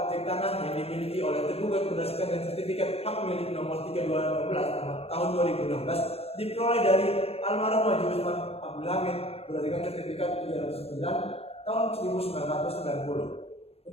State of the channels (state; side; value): late; right; 0.29 ms